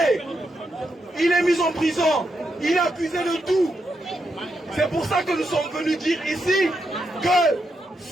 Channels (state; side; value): normal; both; correlation 0.83